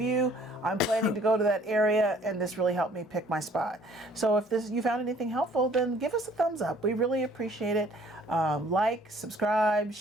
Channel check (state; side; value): normal; both; correlation 0.57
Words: I'm planning to go to that area, and this really helped me pick my spot. So if you found anything helpful, then give us a thumbs up. We really appreciate it. Like, subscribe,